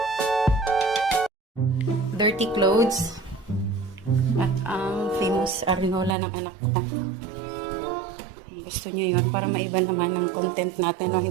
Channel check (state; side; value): drops out; left; at 6.2 s